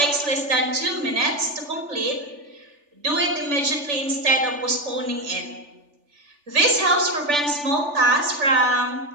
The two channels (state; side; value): late; left; 3.4 ms